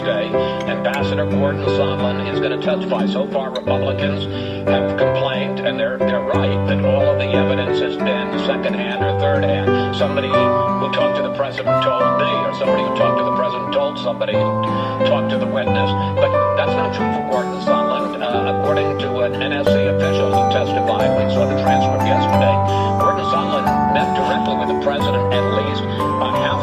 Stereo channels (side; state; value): both; identical; correlation 1.00